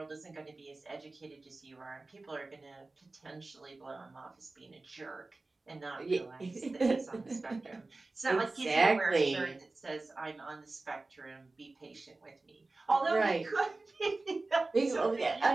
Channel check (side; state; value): left; quieter; 3.3 dB